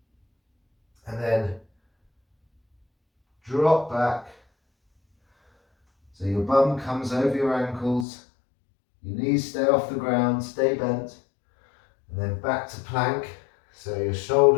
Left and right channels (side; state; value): right; drops out; at 8.1 s